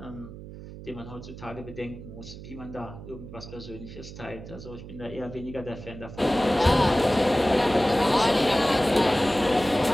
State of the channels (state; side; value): noise; right; hum, 13 dB below the sound